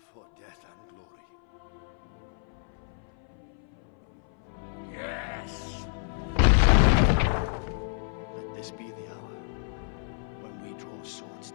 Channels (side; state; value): right; silent; 58 dB below the other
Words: For death and glory. Yes! Let this be the hour when we draw swords